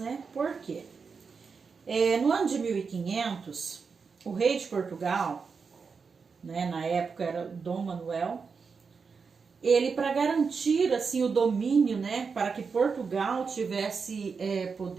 Por quê? No ano de 1500, o rei de Portugal, né, na época era Dom Manuel, ele, para garantir assim o domínio, né, para que Portugal tivesse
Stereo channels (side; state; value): left; quieter; 5.3 dB